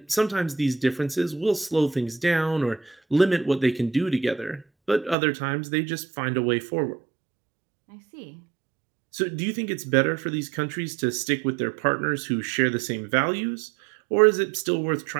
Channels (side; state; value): left; drops out; at 5.2 s